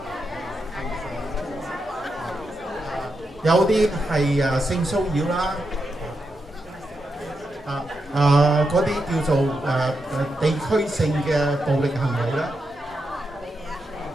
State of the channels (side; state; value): both; normal; correlation 0.85